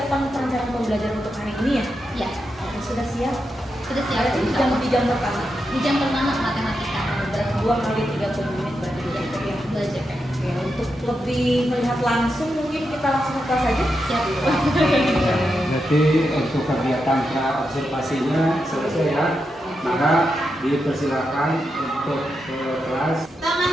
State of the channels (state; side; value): normal; both; correlation 0.86